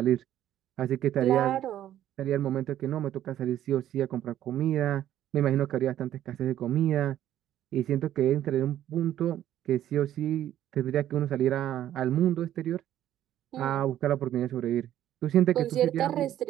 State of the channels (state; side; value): quieter; left; 11.9 dB